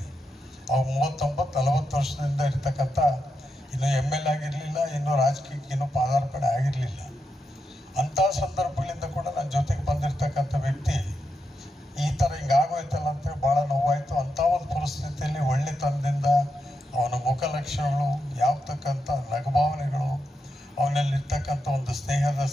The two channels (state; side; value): normal; both; correlation 0.85